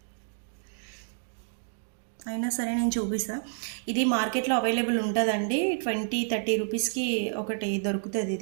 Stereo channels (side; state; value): left; silent; 58 dB below the other